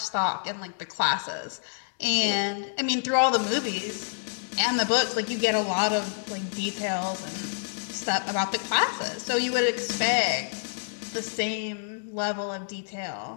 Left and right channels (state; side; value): silent; right; digital silence